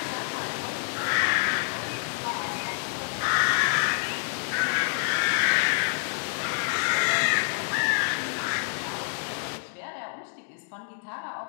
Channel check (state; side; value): silent; right; digital silence